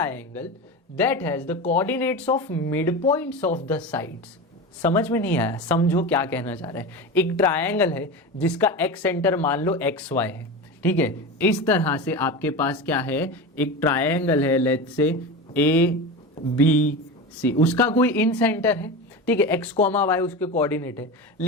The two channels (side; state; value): both; normal; correlation 0.25